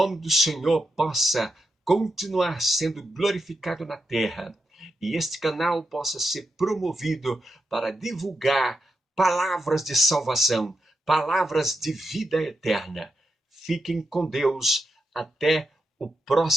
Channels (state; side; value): normal; both; correlation 0.86